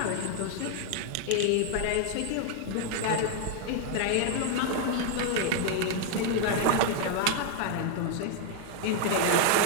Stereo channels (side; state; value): both; different; correlation 0.00